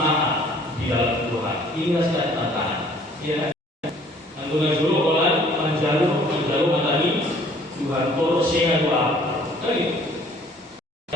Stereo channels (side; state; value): both; normal; correlation 0.56